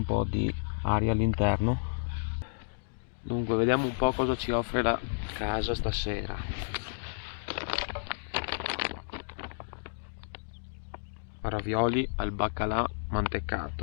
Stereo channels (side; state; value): right; silent; digital silence